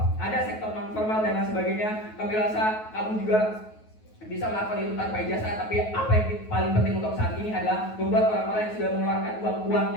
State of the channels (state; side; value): late; right; 9.3 ms